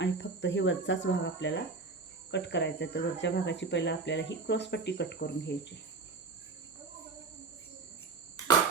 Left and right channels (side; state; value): left; quieter; 4.1 dB